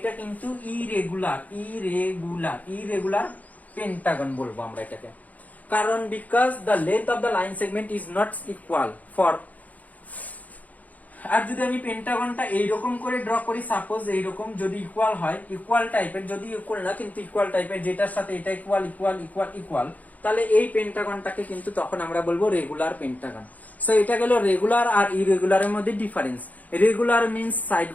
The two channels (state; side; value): late; right; 0.077 ms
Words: কিন্তু irregular Pentagon বলবো আমরা এটাকে। কারণ because the length of the line segment is not equal for. আর যদি আমি পেন্টাগনটা এইরকম করে ড্র করি, সাপোজ এইরকম যদি ইকুয়াল হয়, ইকুয়াল টাইপের, যদি ইকুয়াল না কিন্তু ইকুয়াল টাইপের, যেটার সাথে এটা ইকুয়াল ইকুয়াল ইকুয়াল ইকুয়াল, তাহলে এই পেন্টাগনটাকে কিন্তু তখন আমরা বলবো রেগুলার পেন্টাগন। সো এটা গেল রেগুলার আর ইরেগুলারের মধ্যে ডিফারেন্স। রেগুলার মিন্স সাইড